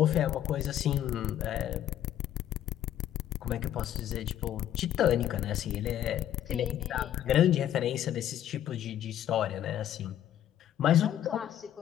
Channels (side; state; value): right; quieter; 11.4 dB